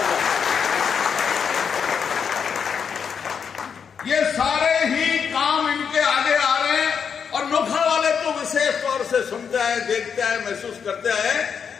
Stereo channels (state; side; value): quieter; right; 6.8 dB